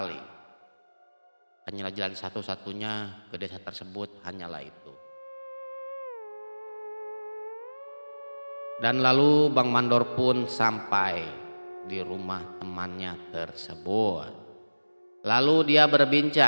Hanyalah jalan satu-satunya ke desa tersebut hanyalah itu. Dan lalu Bang Mandor pun sampai di rumah temannya tersebut. Lalu dia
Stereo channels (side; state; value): both; inverted; correlation -1.00